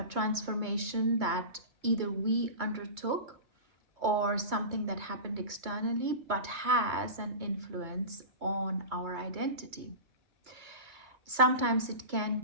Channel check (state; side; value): late; left; 2.3 ms